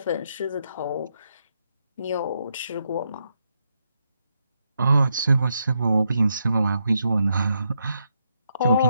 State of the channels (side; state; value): both; inverted; correlation -0.80